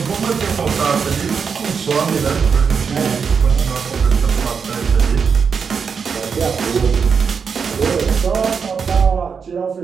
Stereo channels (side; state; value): left; quieter; 6.1 dB